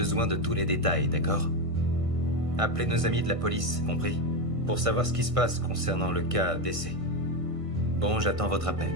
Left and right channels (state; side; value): late; left; 1.5 ms